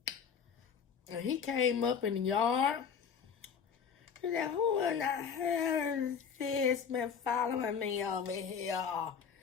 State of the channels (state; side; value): quieter; right; 6.8 dB